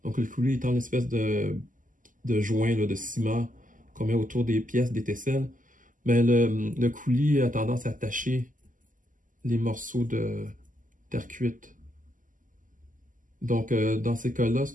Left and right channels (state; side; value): late; left; 0.38 ms